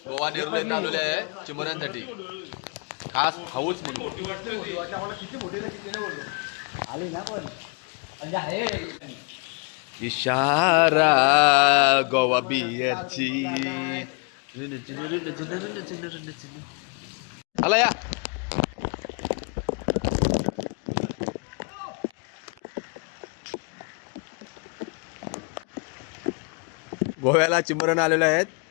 गोवा नेरूल येथे आलेले आहे चिमुऱ्यांसाठी खास हाऊस म्हणून. आली ना पण म्हणजे आहे इशारा गोवा बियरची. चला या. गोव्याला चिमरण आलेले आहेत.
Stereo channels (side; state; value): right; quieter; 34.5 dB